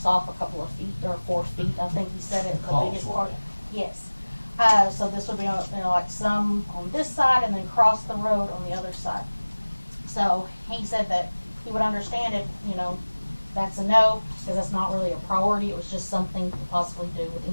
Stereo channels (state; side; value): inverted; both; correlation -1.00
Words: off a couple of feet or 4 feet. I think he said it. The biggest part. Yes. So this would be on, like some on this side and then cross the road on the other side. So he said that he would understand if, that's a no, because that's not really a priority. It was just something to possibly do with